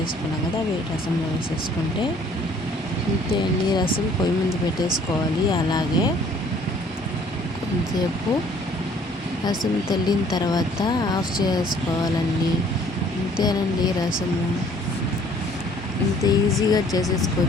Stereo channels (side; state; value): both; normal; correlation 0.58